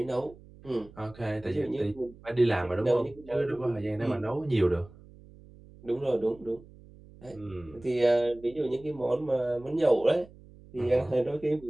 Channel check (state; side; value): noise; right; hum, 22 dB below the sound